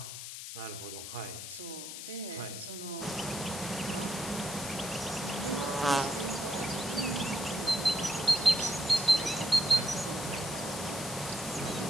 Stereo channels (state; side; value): noise; left; hiss, 8 dB below the sound